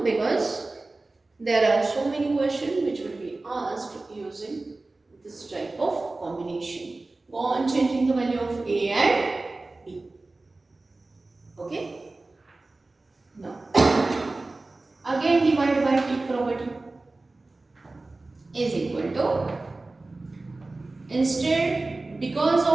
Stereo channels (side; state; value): left; quieter; 3.2 dB